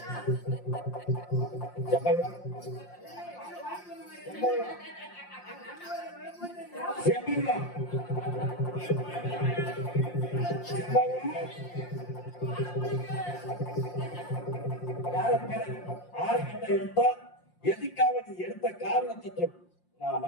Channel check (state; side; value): late; right; 5.7 ms